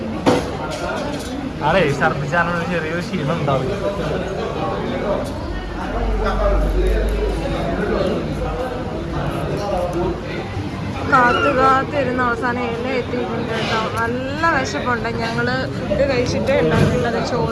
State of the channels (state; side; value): identical; both; correlation 1.00